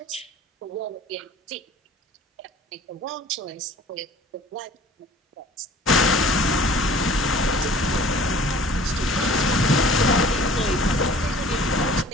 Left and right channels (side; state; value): both; normal; correlation 0.49